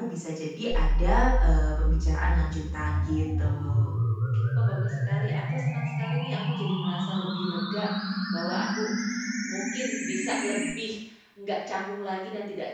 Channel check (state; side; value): identical; both; correlation 1.00